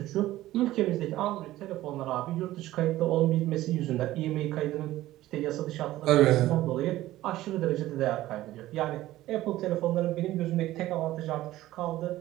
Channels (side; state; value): left; quieter; 15.6 dB